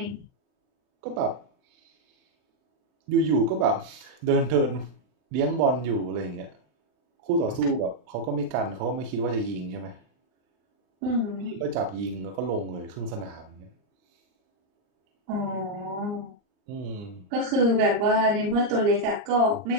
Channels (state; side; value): late; left; 39 ms